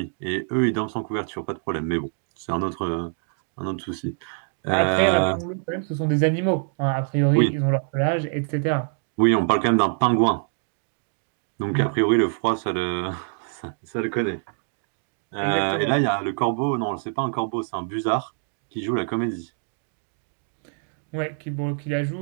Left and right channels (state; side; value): silent; left; 57 dB below the other